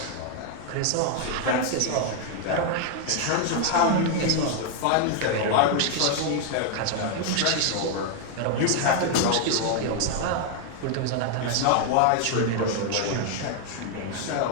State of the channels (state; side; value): different; both; correlation 0.00